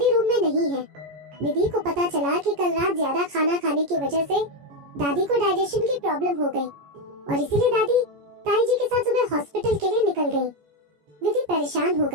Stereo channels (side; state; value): left; late; 14 ms